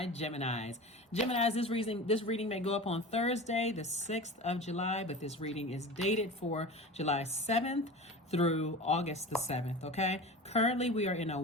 Geminis. Geminis, this reading may go up on Thursday, the 6th of July, but this reading is dated for July 7th through August the 7th, okay? Currently, we are in a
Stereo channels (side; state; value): both; normal; correlation 0.33